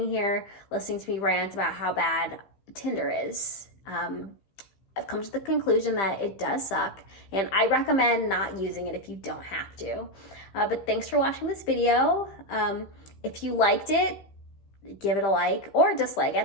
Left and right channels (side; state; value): right; late; 15 ms